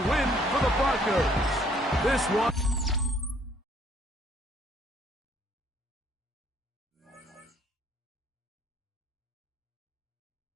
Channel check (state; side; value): normal; both; correlation 0.63